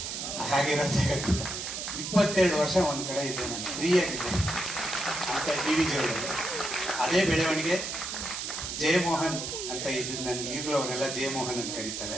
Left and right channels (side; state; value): right; noise; hiss, 5 dB below the sound